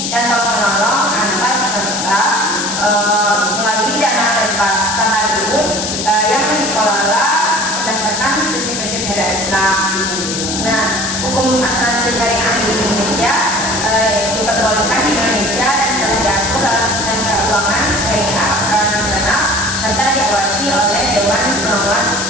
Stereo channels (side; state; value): left; noise; hiss, 3 dB below the sound